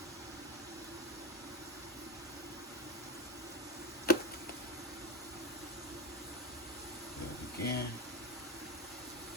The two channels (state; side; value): normal; both; correlation 0.15